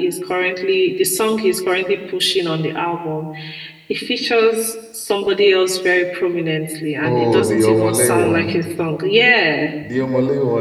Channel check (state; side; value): identical; both; correlation 1.00